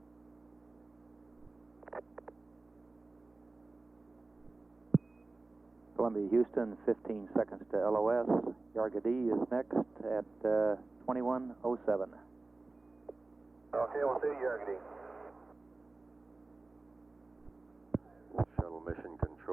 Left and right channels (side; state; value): left; quieter; 3.4 dB